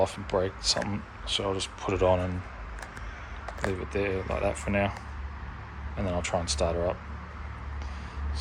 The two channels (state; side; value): identical; both; correlation 1.00